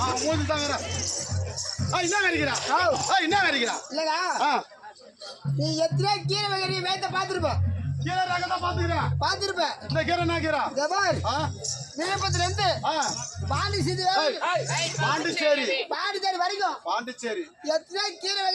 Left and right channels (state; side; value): identical; both; correlation 1.00